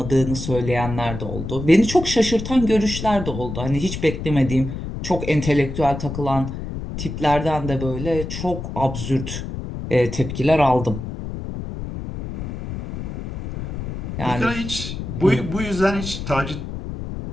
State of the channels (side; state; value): left; noise; rumble, 7 dB below the sound